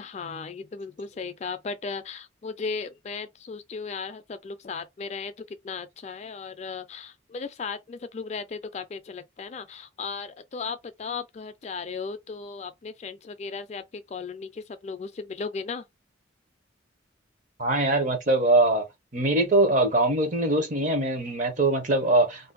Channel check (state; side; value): normal; both; correlation 0.00